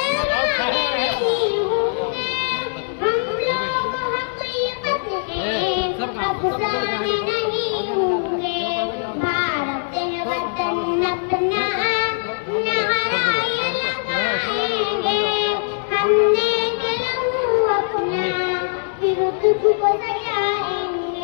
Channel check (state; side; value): silent; right; digital silence